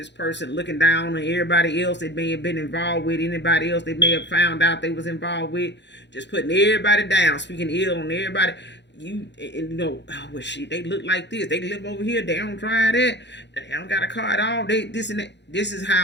person looking down on everybody else that may have been involved with, anybody else they may have found out they was involved with, just putting everybody down, speaking ill on everybody. Well, shit, they look like this, they live over here, they don't drive that, they don't got a car at all, they this and that. This is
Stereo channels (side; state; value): right; late; 0.51 ms